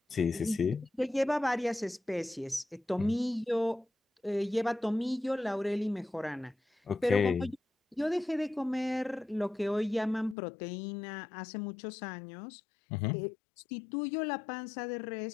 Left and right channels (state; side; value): drops out; right; at 10.4 s